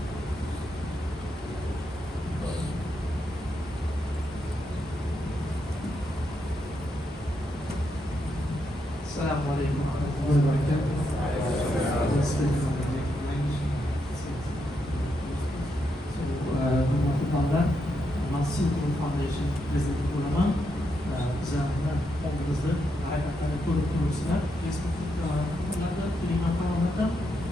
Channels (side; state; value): both; normal; correlation 0.81